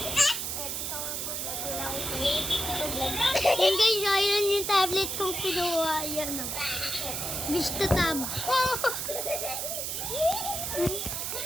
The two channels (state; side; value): noise; right; hiss, 3 dB below the sound